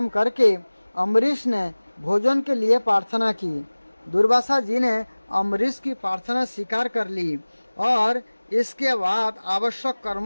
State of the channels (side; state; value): both; inverted; correlation -1.00